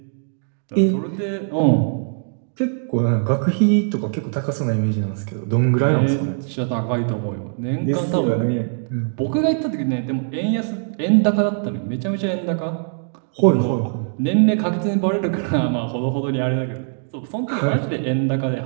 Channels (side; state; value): left; silent; digital silence